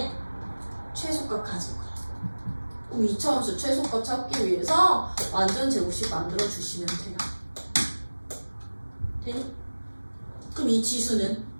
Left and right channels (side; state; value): both; inverted; correlation -1.00